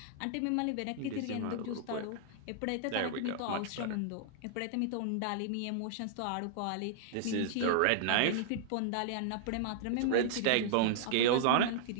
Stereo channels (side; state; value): both; different; correlation -0.01